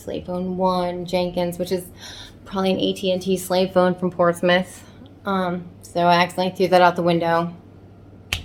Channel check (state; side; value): identical; both; correlation 1.00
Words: phone 1, Jenkins, which is probably an AT&T slave phone from Portsmouth. So I accidentally threw that out the window. I